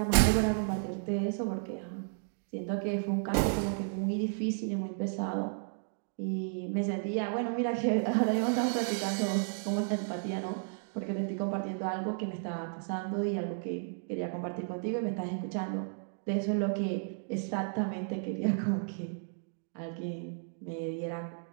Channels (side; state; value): left; silent; digital silence